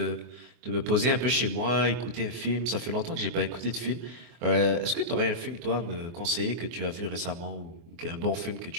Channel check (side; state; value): left; late; 24 ms